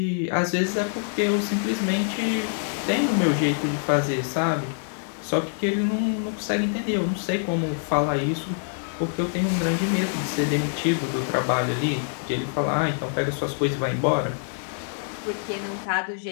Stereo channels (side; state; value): right; silent; 62 dB below the other